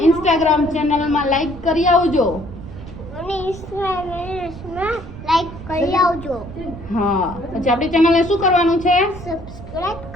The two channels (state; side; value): noise; right; rumble, 13 dB below the sound